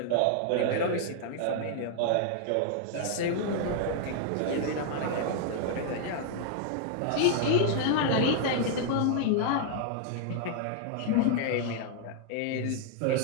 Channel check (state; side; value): different; both; correlation -0.01